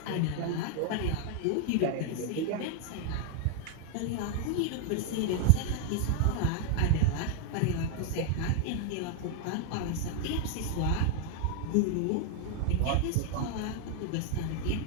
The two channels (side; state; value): both; different; correlation 0.00